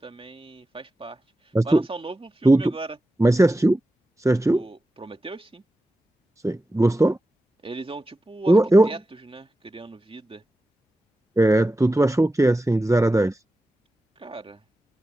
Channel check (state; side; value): normal; both; correlation 0.93